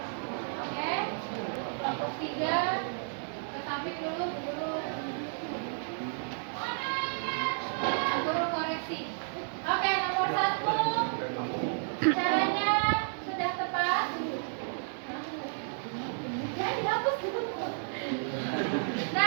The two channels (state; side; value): silent; left; digital silence